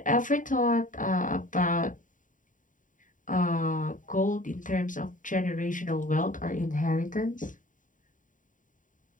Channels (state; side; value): late; right; 0.38 ms